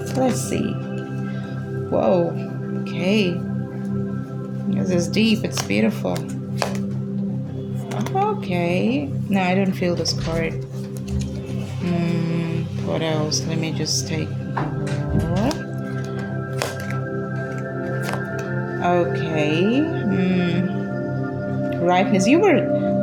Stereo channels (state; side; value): identical; both; correlation 1.00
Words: Let's see. Whoa. Okay. This is deep. It's beautiful. Okay. No, I don't feel this card. What else? Let me just take more. Okay. Ripeness. You were